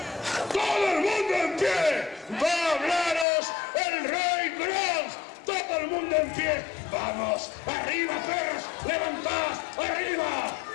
¡Todo el mundo en pie! ¡Va a hablaros el rey Grog! ¡Todo el mundo en pie! ¡Vamos! ¡Arriba, perros! ¡Levantad! ¡Arriba!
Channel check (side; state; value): right; drops out; at 3.2 s